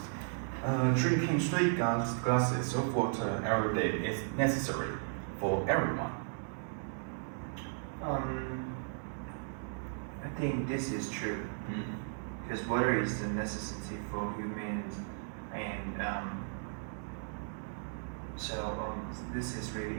Drinking 3 glasses of water every day is necessary for everyone. I think this is true because water is a necessity for humans, and this is really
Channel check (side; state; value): left; silent; digital silence